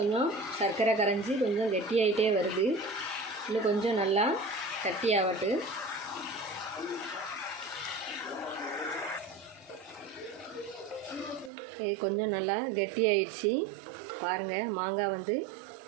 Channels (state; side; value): drops out; left; at 11.5 s